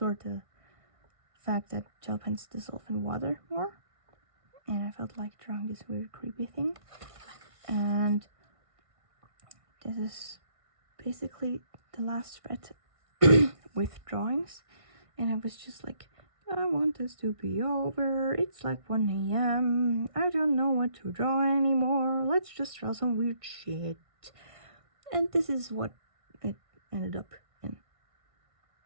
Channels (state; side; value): late; left; 1.6 ms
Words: the fact that gel pens dissolve in water more. And I felt like drawing this weird creepy thing. And this is basically the last spread with drawings, and I was just like, I want this to be over. It's like 1 a.m. I don't know what to draw anymore. Let's just draw some weird shit. And this is what it ended up in.